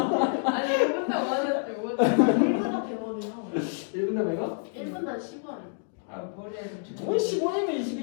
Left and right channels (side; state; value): right; silent; digital silence